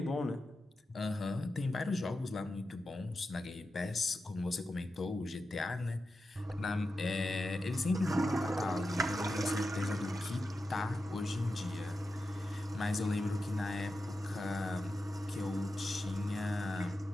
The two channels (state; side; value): normal; both; correlation 0.90